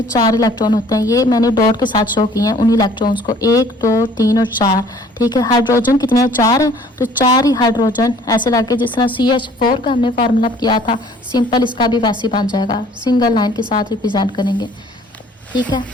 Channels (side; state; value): both; normal; correlation 0.55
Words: 4 इलेक्ट्रॉन होते हैं। ये मैंने डॉट के साथ शो किए हैं उन इलेक्ट्रॉन्स को, 1 2 3 और 4। ठीक है, हाइड्रोजन कितने हैं, 4 हैं, तो 4 ही हाइड्रोजन ऐसे लगे जिस तरह CH4 का हमने फार्मूला किया था, सिंपल इसका भी वैसे बन जाएगा, सिंगल लाइन के साथ रिप्रेजेंट करेंगे। ठीक है,